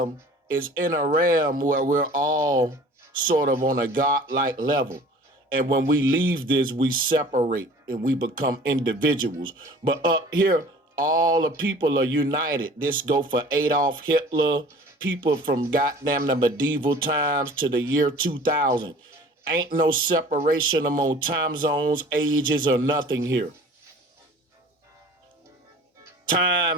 is in a realm where we're all sort of on a godlike level. And when we leave this, we separate and we become individuals. But up here, all the people are united. This go for Adolf Hitler, people from goddamn the medieval times to the year 2000. Ain't no separation among time zones, ages, or nothing here.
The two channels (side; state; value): both; normal; correlation 0.46